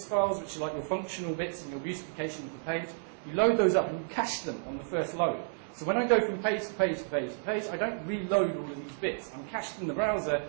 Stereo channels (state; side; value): silent; left; digital silence